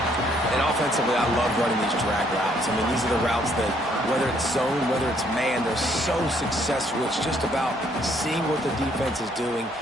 And offensively, I love running these drag routes. I mean, these are the routes that, whether it's zone, whether it's man, they're so successful. It's just about seeing what the defense is doing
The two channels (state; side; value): normal; both; correlation 0.67